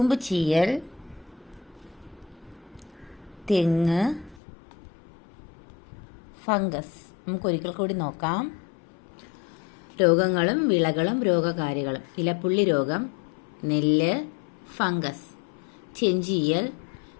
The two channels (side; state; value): right; drops out; at 4.4 s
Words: ചീയൽ തെങ്ങ്, ഫംഗസ്. നമുക്കൊരിക്കൽ കൂടി നോക്കാം. രോഗങ്ങളും വിളകളും രോഗകാരികളും. ഇലപ്പുള്ളി രോഗം നെല്ല്, ഫംഗസ്. ചെഞ്ചീയൽ